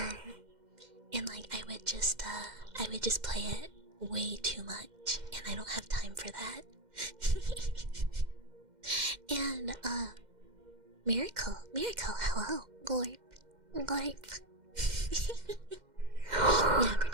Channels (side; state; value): left; late; 2.1 ms